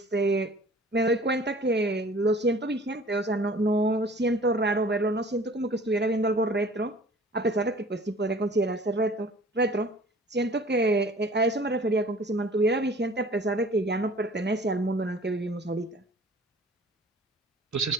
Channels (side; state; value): both; normal; correlation 0.48